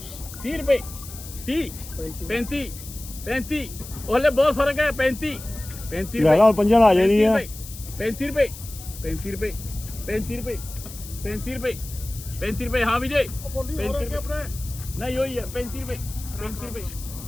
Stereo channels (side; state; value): left; noise; hiss, 14 dB below the sound